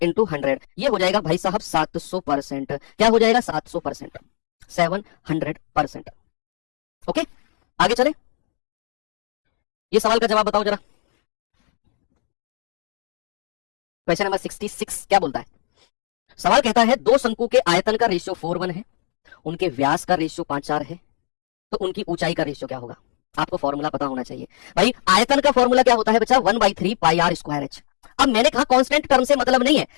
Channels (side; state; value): right; silent; digital silence